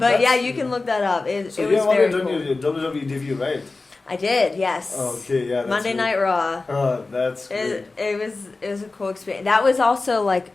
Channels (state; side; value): quieter; right; 3.6 dB